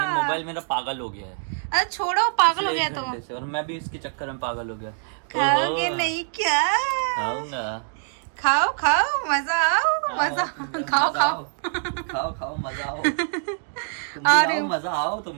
मोबाइल मेरा पागल हो गया है। अरे छोड़ो, पागल हो गया तो। और मैं भी इसके चक्कर में पागल हो गया। खाओगे नहीं क्या? खाऊंगा। खाओ खाओ, मजा आओ, मजा खाओ खाओ खाओ खाओ, मजा आओ। तुम भी आओ, मजा आओ, तुम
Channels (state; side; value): silent; left; digital silence